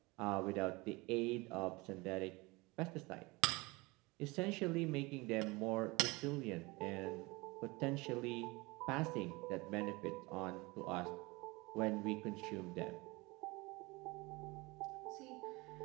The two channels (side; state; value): left; quieter; 24.0 dB